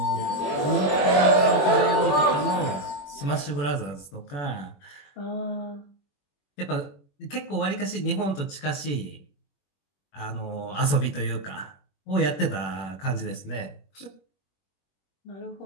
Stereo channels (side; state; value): right; late; 21 ms